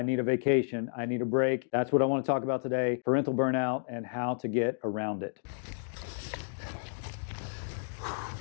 need a vacation. I need a break. That's what I want to talk about today, parental burnout and how to get around it.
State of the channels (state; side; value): silent; right; digital silence